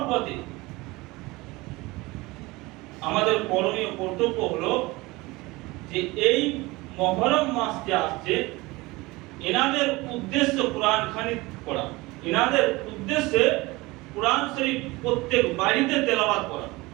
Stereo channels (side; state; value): left; quieter; 21.9 dB